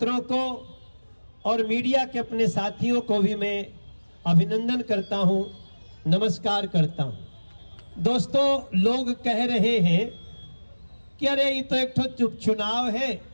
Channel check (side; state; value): both; inverted; correlation -1.00